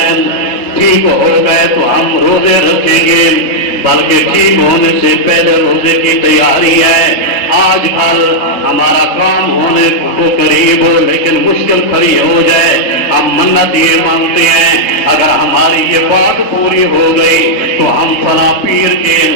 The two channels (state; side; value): late; right; 3.7 ms